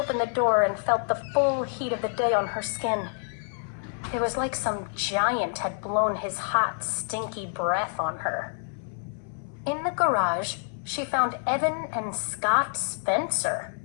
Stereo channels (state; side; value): silent; right; 60 dB below the other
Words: the door and felt the full heat of the day on her skin. It was like some giant had blown his hot, stinky breath on her. In the garage, she found Evan and Scott Spencer.